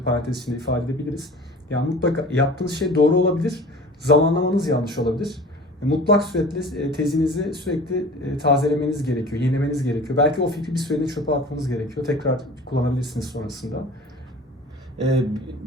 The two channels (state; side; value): normal; both; correlation 0.41